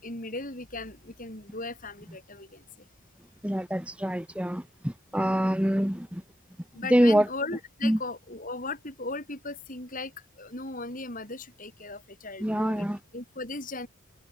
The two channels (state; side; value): normal; both; correlation 0.86